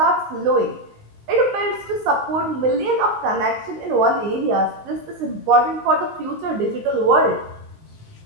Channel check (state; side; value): late; left; 19 ms